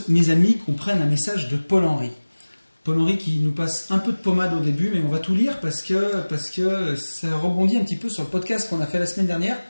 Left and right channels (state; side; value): inverted; both; correlation -1.00